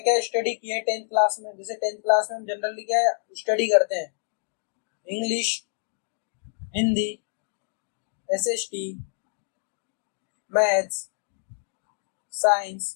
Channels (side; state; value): right; silent; digital silence